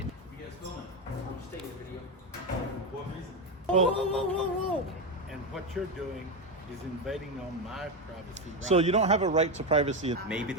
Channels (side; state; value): both; normal; correlation 0.12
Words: Stay in the video. What reason? Whoa, whoa, whoa, whoa. And what you're doing is invading on my privacy. Right? So you don't have a right to privacy. Maybe